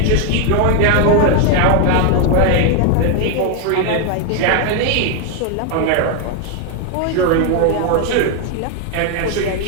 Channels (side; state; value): both; different; correlation 0.00